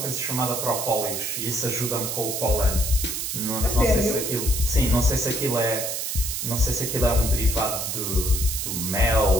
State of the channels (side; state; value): right; noise; hiss, 3 dB below the sound